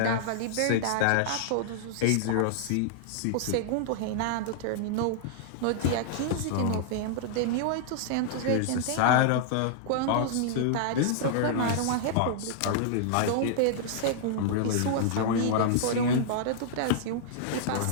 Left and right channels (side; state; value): both; different; correlation -0.01